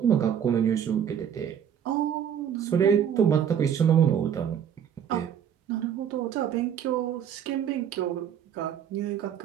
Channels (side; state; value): left; quieter; 8.7 dB